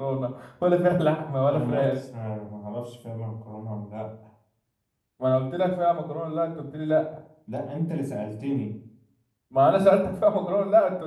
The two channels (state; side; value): identical; both; correlation 1.00